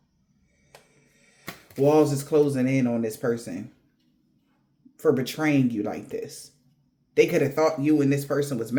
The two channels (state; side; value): identical; both; correlation 1.00